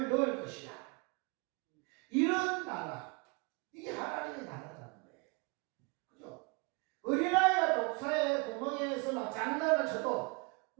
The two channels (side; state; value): left; quieter; 30.4 dB